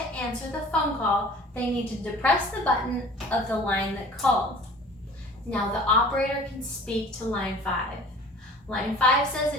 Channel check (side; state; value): both; normal; correlation 0.45